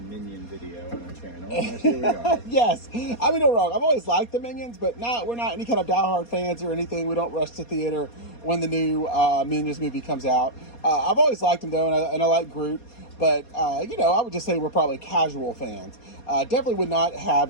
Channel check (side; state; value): right; late; 4.2 ms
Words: video on our channel. And here we are. Yes. I mean, no wrong. I've always liked the Minions, but we're not any kind of diehard fans or anything. We don't rush to theater when the new Minions movie comes out. I've always liked them though, and I like Groot. But, I would just say we're probably casual fans. Definitely would not have